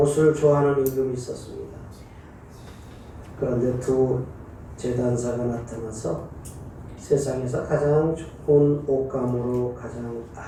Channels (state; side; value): identical; both; correlation 1.00